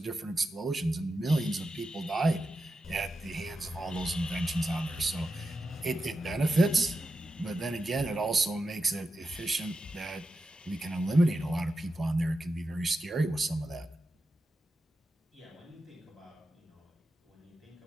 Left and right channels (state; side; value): normal; both; correlation 0.89